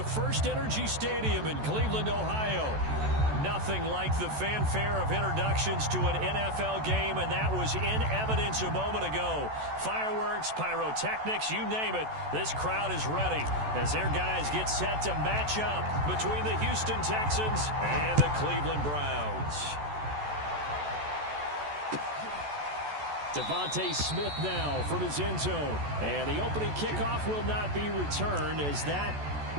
First Energy Stadium in Cleveland, Ohio. Nothing like the fanfare of introductions to an NFL game, and that was in evidence a moment ago. Fireworks, pyrotechnics, you name it, this crowd is ready as their guys get set to match up between the Houston Texans and the Cleveland Browns. Devontae Smith now from his end zone. And the opening kickoff will not be returned, as that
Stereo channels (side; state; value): left; late; 14 ms